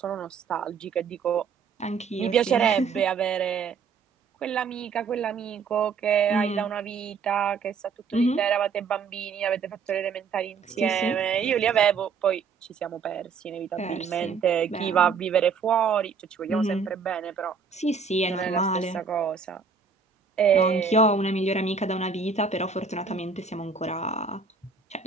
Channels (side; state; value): left; quieter; 5.5 dB